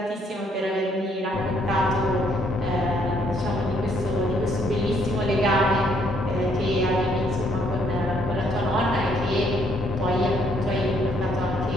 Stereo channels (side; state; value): both; normal; correlation 0.68